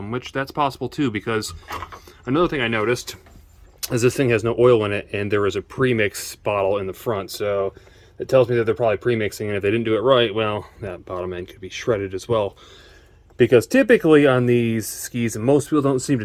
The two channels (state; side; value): identical; both; correlation 1.00